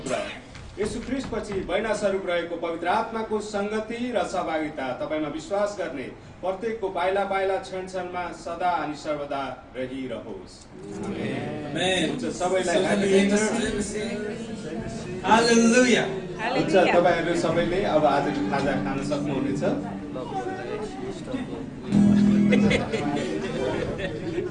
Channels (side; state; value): both; identical; correlation 1.00